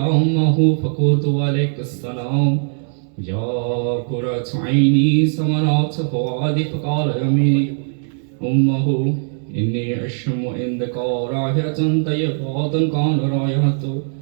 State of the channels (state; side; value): silent; left; 64 dB below the other